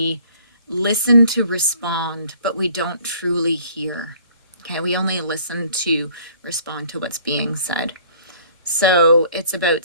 listen to respond, but we don't truly hear. Okay, we only listen to respond to what's being said. So it's about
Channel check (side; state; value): both; inverted; correlation -0.54